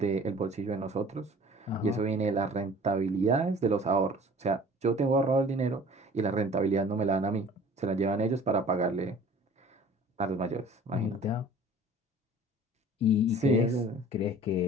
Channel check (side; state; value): both; normal; correlation 0.47